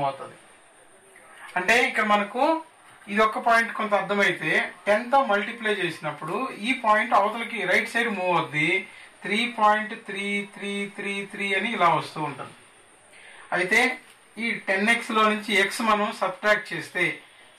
అవుతుంది. అంటే ఇక్కడ మనకు ఇది ఒక పాయింట్ కొంత అర్థమైతే 10తో మల్టిప్లై చేసినప్పుడు ఈ పాయింట్ అవతలకి రైట్ సైడ్ మూవ్ అవుద్ది, 3.3333 అని ఇలా వస్తూ ఉంటుంది. అయితే ఈ 10x లో నుంచి x మనం సబ్ట్రాక్ట్ చేస్తే,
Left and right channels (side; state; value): both; identical; correlation 1.00